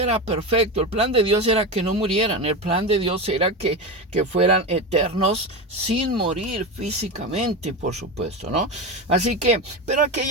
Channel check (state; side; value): normal; both; correlation 0.19